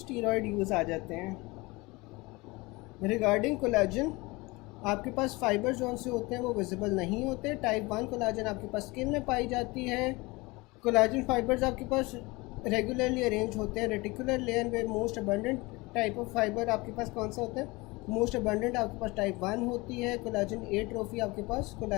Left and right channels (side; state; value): right; quieter; 23.6 dB